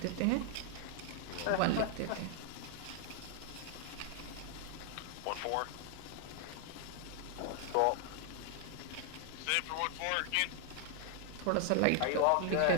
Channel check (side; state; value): both; different; correlation 0.00